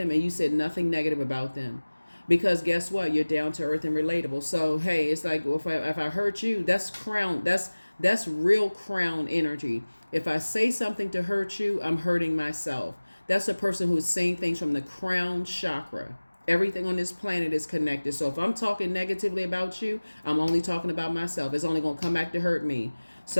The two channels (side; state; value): both; inverted; correlation -1.00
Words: and you said nothing negative about them. Because guess what? You're down to earth and relatable. So, hey, it's like, well, if I hurt you, that's crown. That's real crown energy. If I say something to hurt you, I'm hurting myself. That's a person who's saying things from the crown chakra. Everything on this planet is connected. So if I'm talking negatively about you, I'm only talking about myself. It's only going to come back to hurt me.